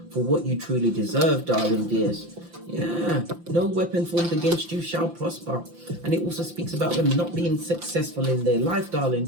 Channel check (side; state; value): left; late; 5.8 ms